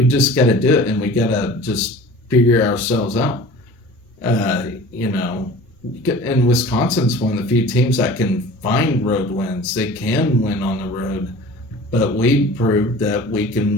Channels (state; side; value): normal; both; correlation 0.41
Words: just got to do it, and we got to just figure ourselves out. And Wisconsin's one of the few teams that can find road wins. They can win on the road. But we proved that we